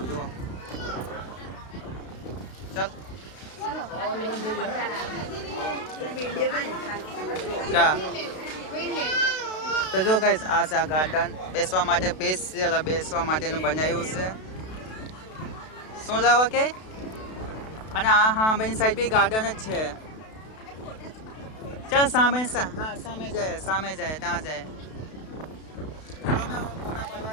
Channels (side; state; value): right; late; 32 ms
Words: જો ચાલ તો જો ગાઈસ આ છે આ ગાર્ડન બેસવા માટે સ્પેશિયલ બેસવા માટેનું બનાવ્યું છે શું લાવવા કે અને આ હા બેની સાઈડ બી ગાર્ડન જ છે ચાલ સામે હા સામે જાય ત્યાં જાય